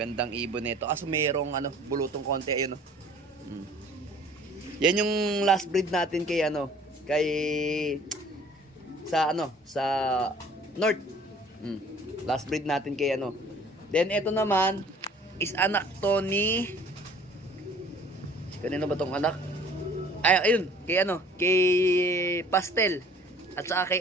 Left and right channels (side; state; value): both; normal; correlation 0.52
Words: ibon nito. Kaso mayroong ano, bulutong konti. Ayun o. Yan yung last breed natin kay ano. Kay sa ano. Sa North. Last breed natin kay ano. Then ito naman is anak to ni kanino ba tong anak? Ay, ayun. Kay ano. Kay Pastel. At saka